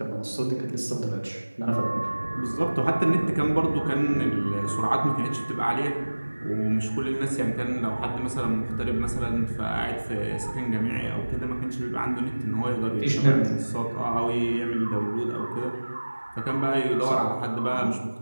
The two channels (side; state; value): both; inverted; correlation -1.00